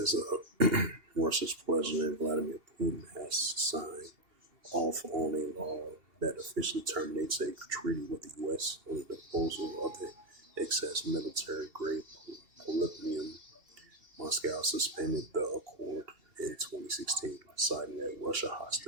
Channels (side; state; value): left; late; 2.7 ms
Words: Russia's President Vladimir Putin has signed off on a law that officially terminates a treaty with the U.S. on the disposal of the excess military-grade polonium. Moscow suspended the accord in 2016, citing that Russia